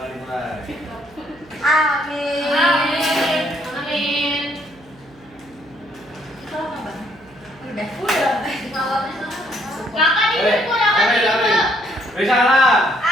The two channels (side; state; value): right; noise; hum, 26 dB below the sound